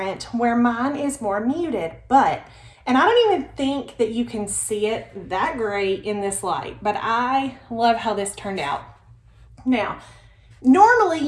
where mine is more muted, and I don't even think that you can see it that great in this light, but I love how this turned out. Now, normally,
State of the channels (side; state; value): both; identical; correlation 1.00